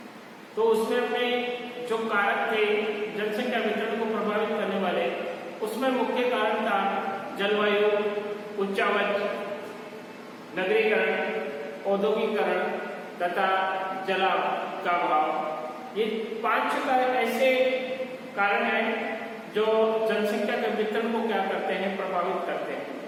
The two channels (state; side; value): identical; both; correlation 1.00